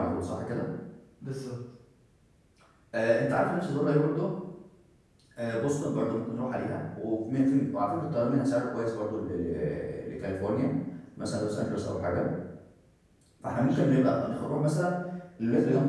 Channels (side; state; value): both; identical; correlation 1.00